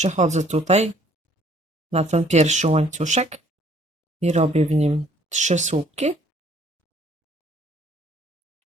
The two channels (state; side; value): normal; both; correlation 0.60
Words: tutaj na ten pierwszy łańcuszek i robię w nim 3 słupki.